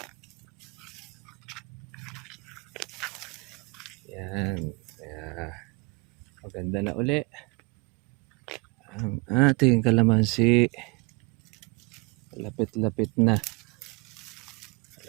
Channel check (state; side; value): quieter; left; 28.6 dB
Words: Yan. Kaya maganda na uli ang ating kalamansi. Lapit-lapit na.